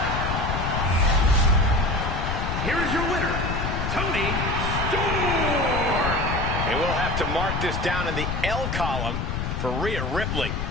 Here is your winner, Toni Storm. And we'll have to mark this down in the L column for Rhea Ripley.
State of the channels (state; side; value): noise; left; rumble, 2 dB below the sound